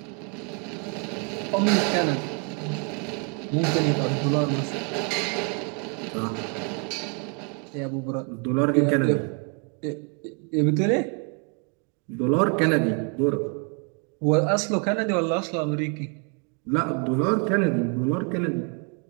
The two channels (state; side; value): quieter; left; 37.1 dB